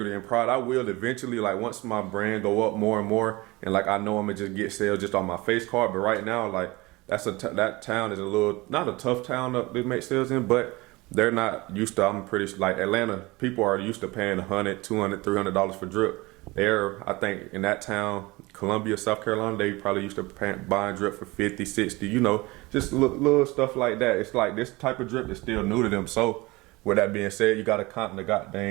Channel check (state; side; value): quieter; left; 22.4 dB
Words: and pride. I will eventually, like once my brand go up more and more, and like I know I'm gonna just get sales just on my face card. But right now, like that town is a little, not a tough town to make sales in, but they're not used to, I'm pretty like Atlanta, people are used to paying $100, $200, $300 for drip. I think in that town, Columbia, South Carolina, they probably used to buying drip for 50, 60, you know, just little stuff like that. It's like this type of drip is still new to them. So with that being said, you gotta kind of